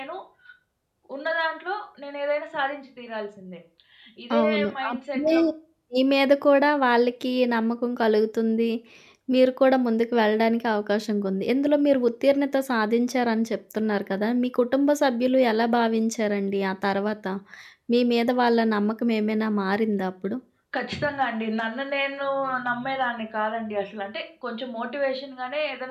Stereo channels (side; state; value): both; identical; correlation 1.00